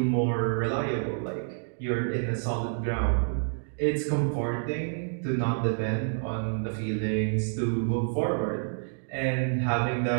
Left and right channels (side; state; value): left; silent; digital silence